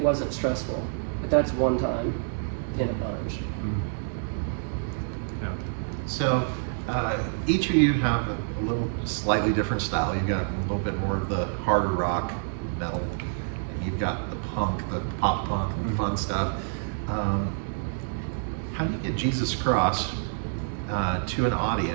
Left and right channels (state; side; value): silent; left; digital silence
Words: wasn't stressful, but that's one time in a bunch. Yeah. So each of you have a little slightly different style. You've got a little bit more of the harder rock, metal, and you've got the punk, the pop punk, and fun stuff. How do you get Jesus Cross to an